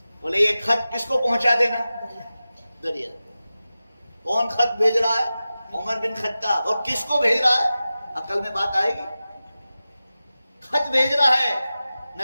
بولے یہ خط کس کو پہنچا دینا؟ دریا۔ کون خط بھیج رہا ہے؟ عمر بن خطاب۔ اور کس کو بھیج رہا ہے؟ عقل میں بات آئے گی؟ خط بھیج رہا ہے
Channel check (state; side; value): inverted; both; correlation -0.95